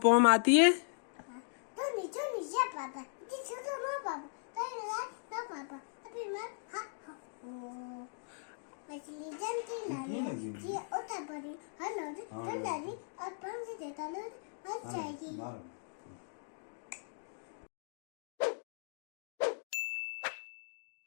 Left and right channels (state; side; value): silent; right; digital silence